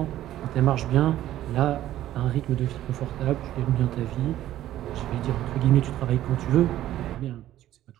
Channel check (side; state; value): left; quieter; 13.3 dB